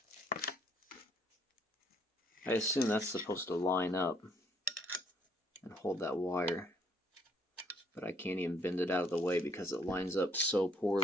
I assume that's supposed to line up and hold that wire, but I can't even bend it out of the way because it lines up so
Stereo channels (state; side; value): normal; both; correlation 0.66